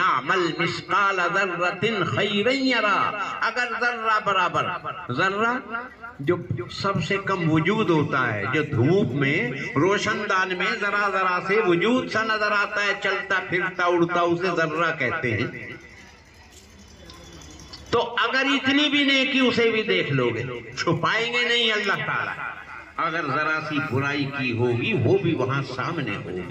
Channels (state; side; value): identical; both; correlation 1.00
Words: مِثْقَالَ ذَرَّةٍ خَيْرًا يَرَهُ، اگر ذرہ برابر، ذرہ جو سب سے کم وجود ہوتا ہے، جو دھوپ میں روشن دان میں ذرا ذرا سے وجود سا نظر آتا ہے، چلتا پھرتا اڑتا، اسے ذرہ کہتے ہیں. تو اگر اتنی بھی نیکی اسے بھی دیکھ لو گے، چھپائیں گے نہیں اللہ تعالیٰ. اگر ذرا سی برائی کی ہوگی وہ بھی وہاں سامنے